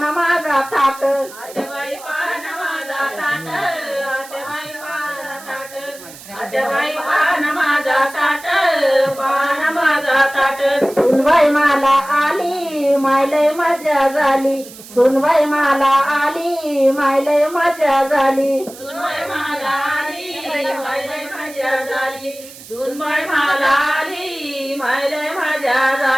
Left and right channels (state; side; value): noise; right; hiss, 18 dB below the sound